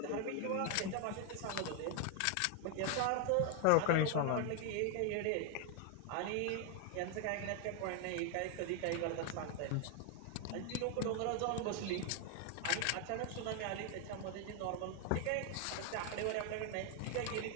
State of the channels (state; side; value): different; both; correlation 0.00